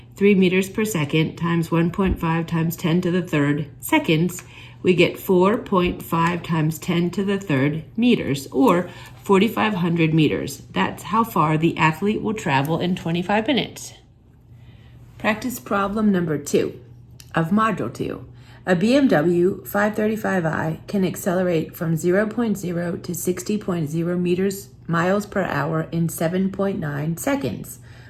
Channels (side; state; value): both; identical; correlation 1.00